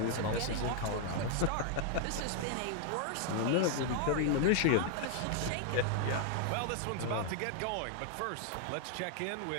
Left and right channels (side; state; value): both; different; correlation 0.00